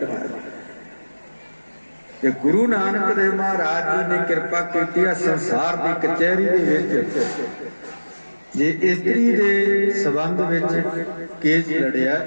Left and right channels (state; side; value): inverted; both; correlation -1.00